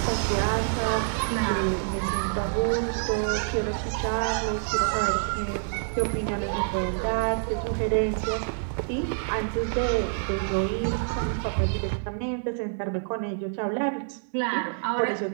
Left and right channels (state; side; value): silent; left; digital silence